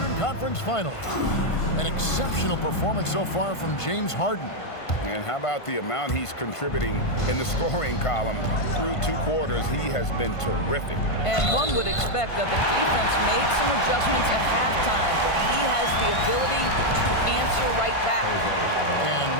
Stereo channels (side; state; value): right; late; 1.5 ms